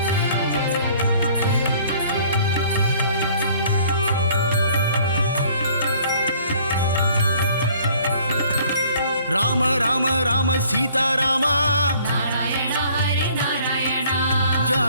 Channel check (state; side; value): inverted; both; correlation -0.56